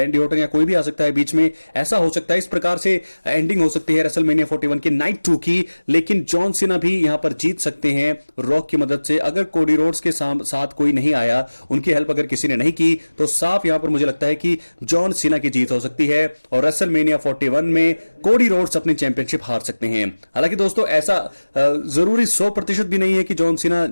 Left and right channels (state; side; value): inverted; both; correlation -1.00